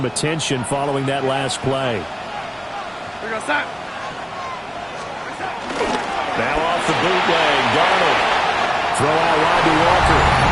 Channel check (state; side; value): identical; both; correlation 1.00